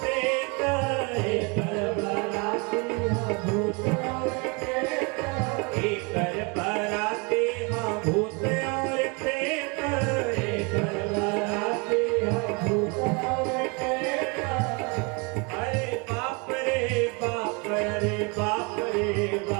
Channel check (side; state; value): left; quieter; 31.0 dB